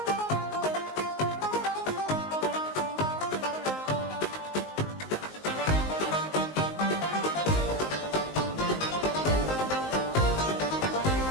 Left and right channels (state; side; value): late; right; 19 ms